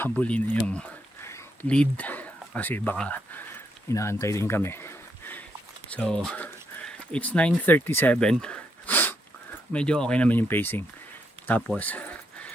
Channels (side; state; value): both; normal; correlation 0.78